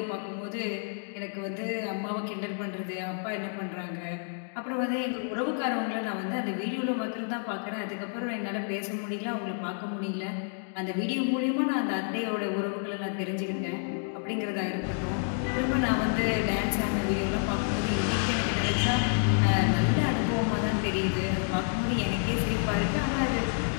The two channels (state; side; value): silent; right; 58 dB below the other